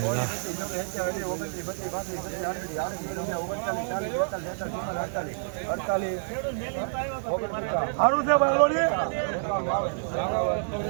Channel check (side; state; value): left; silent; digital silence